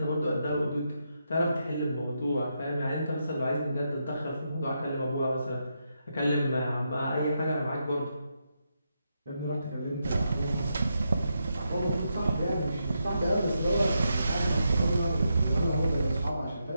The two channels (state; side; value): inverted; both; correlation -0.83